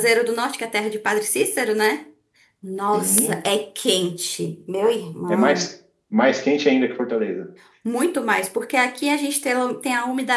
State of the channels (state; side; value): identical; both; correlation 1.00